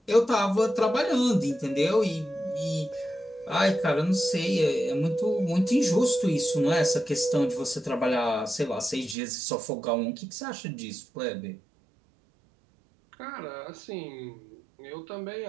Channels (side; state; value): left; drops out; at 9.2 s